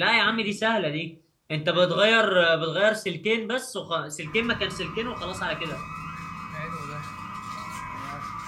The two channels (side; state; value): both; identical; correlation 1.00